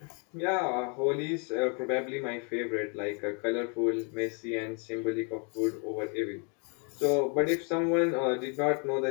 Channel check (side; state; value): right; quieter; 37.4 dB